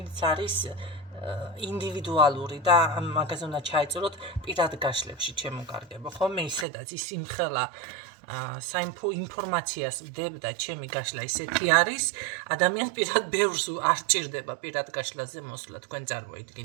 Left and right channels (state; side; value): drops out; left; at 6.7 s